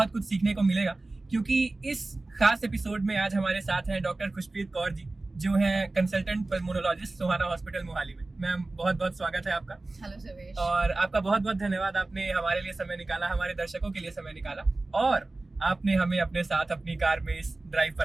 कुछ सीखने को मिलेगा, क्योंकि इस खास एपिसोड में आज हमारे साथ हैं डॉक्टर खुशप्रीत कौर जी, जो हैं कंसल्टेंट पल्मोनोलॉजिस्ट सोहाना हॉस्पिटल मोहाली में। मैम, बहुत बहुत स्वागत है आपका। हेलो सर्वेश। और आपका बहुत बहुत धन्यवाद, आपने हमारे लिए समय निकाला, हमारे दर्शकों के लिए समय निकाला, और आपने हमें अपने साथ अपनी कार में इस ड्राइव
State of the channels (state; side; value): quieter; left; 3.1 dB